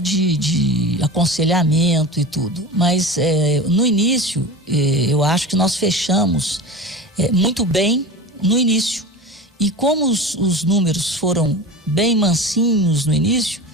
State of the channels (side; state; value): both; normal; correlation 0.31